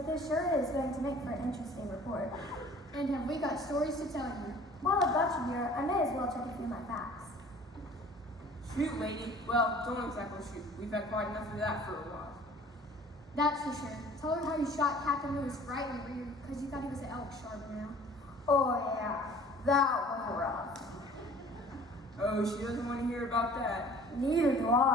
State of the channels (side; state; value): both; normal; correlation 0.49